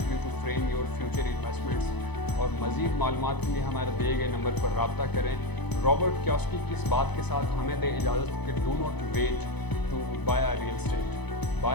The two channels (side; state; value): right; late; 0.99 ms